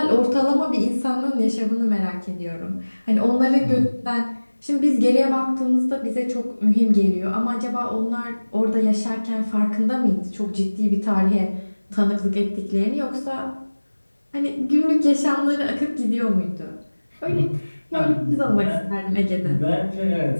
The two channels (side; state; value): both; inverted; correlation -1.00